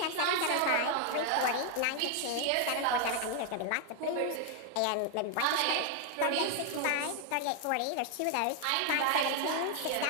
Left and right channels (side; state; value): both; different; correlation 0.01